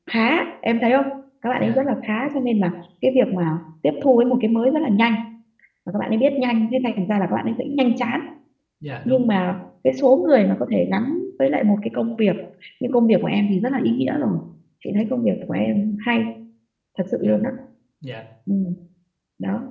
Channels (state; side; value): identical; both; correlation 1.00